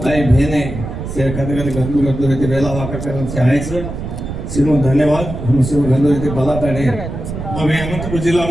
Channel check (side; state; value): right; noise; rumble, 7 dB below the sound